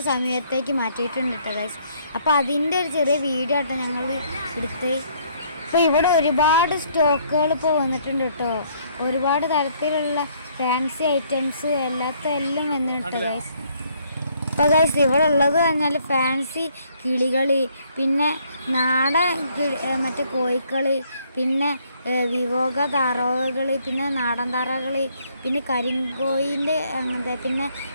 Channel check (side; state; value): both; inverted; correlation -0.66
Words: സമയത്തേക്ക് മാറ്റിയിട്ടുണ്ട് കേട്ടോ ഗായ്സ്. അപ്പോൾ അതിൻ്റെ ഒരു ചെറിയ വീഡിയോ ആട്ടോ ഞങ്ങൾ എടുത്ത്. ഇപ്പോൾ ഇവിടെ ഒരുപാട് സ്റ്റോക്കുകൾ ഇപ്പോൾ വന്നിട്ടുണ്ട് കേട്ടോ. ഒരുപാട് തരത്തിലുള്ള ഫാൻസി ഐറ്റംസ് എല്ലാം വന്നിട്ടുണ്ട് ഗായ്സ്. അപ്പോൾ ഗൈസ് ഇവിടെ ഉള്ളത് പറഞ്ഞാൽ ഫാൻസി കിളികൾ, പിന്നെ നാടൻ മറ്റേ കോഴിക്കൾ, പിന്നെ വിവോക താറാവുകൾ, പിന്നെ നാടൻ താറാവുകൾ, പിന്നെ കരിങ്കോയിൻ്റെ അങ്ങനത്തെ, പിന്നെ